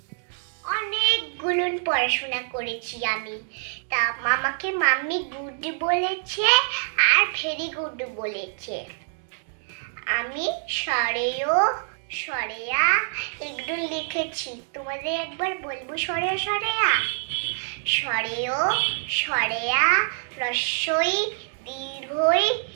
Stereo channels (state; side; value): silent; left; digital silence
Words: অনেকগুলো পড়াশোনা করেছি আমি। তা মামাকে মাম্মি গুড বলেছে আর ভেরি গুড বলেছে। আমি সরেও সরেয়া এগুলো লিখেছি। তোমাদের একবার বলবো সরেয়া সরেয়া। সরেও সরেয়া রস্যই দীর্ঘই